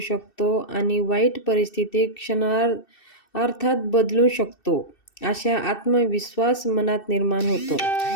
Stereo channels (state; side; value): late; right; 2.6 ms